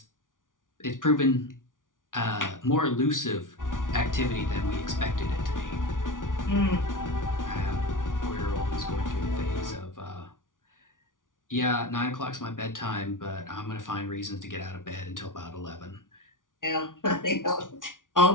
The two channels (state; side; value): late; right; 0.88 ms